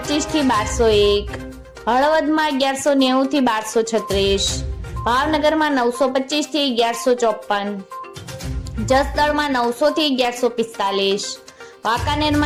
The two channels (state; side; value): identical; both; correlation 1.00